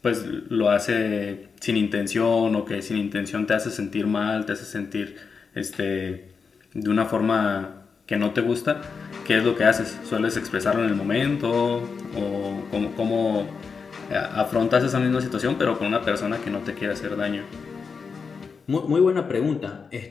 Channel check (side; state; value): right; quieter; 5.4 dB